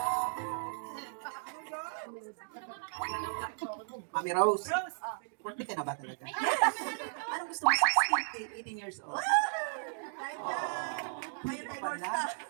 Mami Rose, Rose! birthday ka na ba talaga? Anong gusto mo? 16? 18 years old. Kahit na, ngayon ay North na.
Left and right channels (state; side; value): silent; left; digital silence